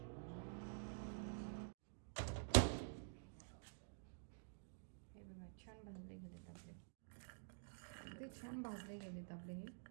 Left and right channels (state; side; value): silent; left; digital silence